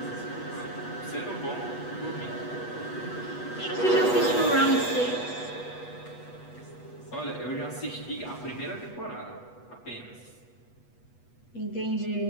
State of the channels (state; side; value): late; right; 8.2 ms